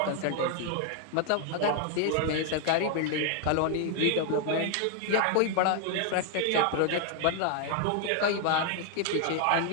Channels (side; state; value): both; different; correlation 0.00